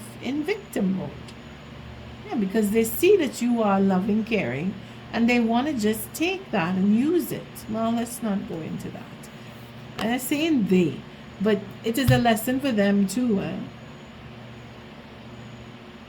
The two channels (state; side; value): identical; both; correlation 1.00